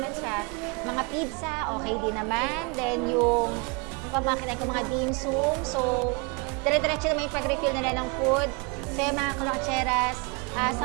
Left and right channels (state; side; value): quieter; left; 31.5 dB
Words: siya. Mga pizza, okay din naman. Then, yung pamakinan ko mga dim sum. So, dire-diretso naman yung pag-refill nila ng food. So, mga kalotseras,